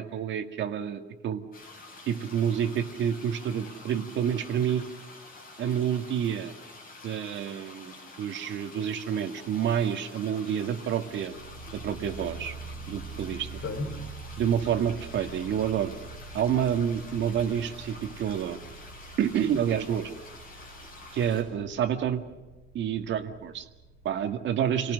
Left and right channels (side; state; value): left; quieter; 8.1 dB